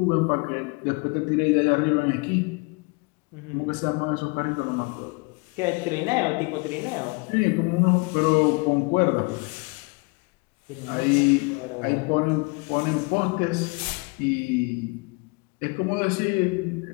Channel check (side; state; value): right; quieter; 30.2 dB